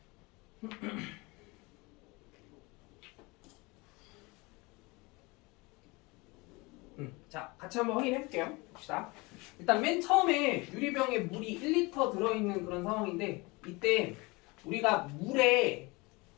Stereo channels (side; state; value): right; quieter; 25.1 dB